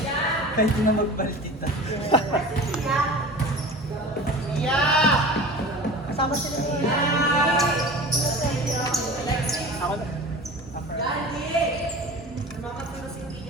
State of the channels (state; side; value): normal; both; correlation 0.37